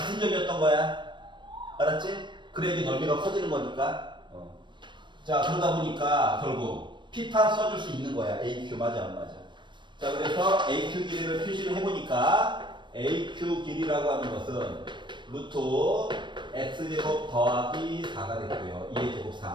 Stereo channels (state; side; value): late; left; 0.22 ms